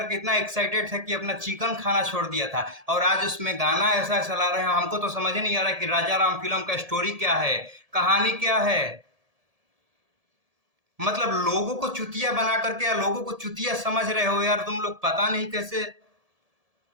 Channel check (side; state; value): left; late; 1.7 ms